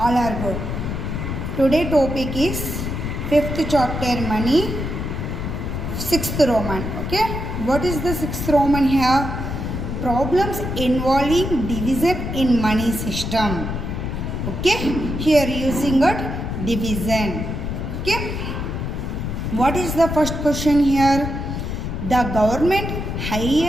are good. Today topic is 5th chapter money, 6th Roman. Okay. What is the 6th Roman here? Problems involving division in money system. Okay. Here using it division. Okay. What is the first question here? The government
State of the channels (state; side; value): noise; left; rumble, 4 dB below the sound